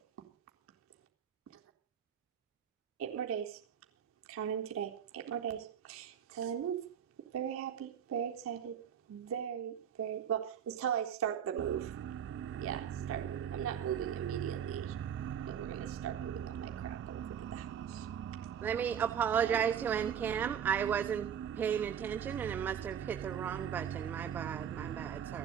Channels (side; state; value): left; quieter; 8.5 dB